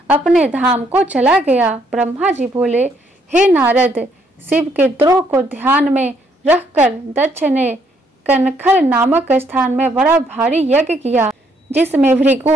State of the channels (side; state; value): both; normal; correlation 0.70